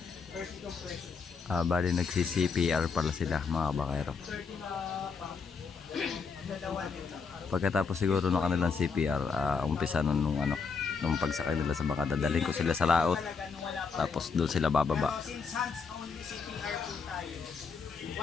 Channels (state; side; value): quieter; right; 5.3 dB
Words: Bali nagsi-CPR pala sila mga kabangkero. Pagkatapos siguro ng kanilang CPR, umpisa nung pagsakay nila sa bangka, dadalhin ko sila sa laot. Tapos doon sila bababa. Since hands only CPR po tayo,